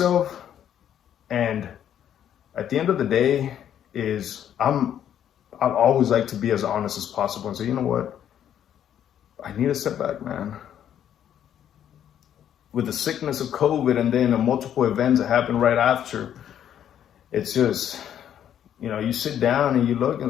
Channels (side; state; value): right; quieter; 10.0 dB